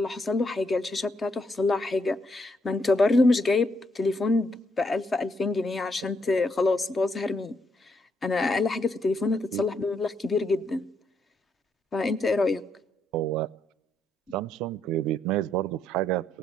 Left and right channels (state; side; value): normal; both; correlation 0.76